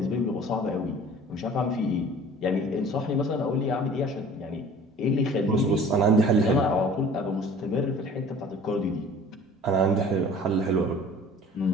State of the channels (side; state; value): both; normal; correlation 0.47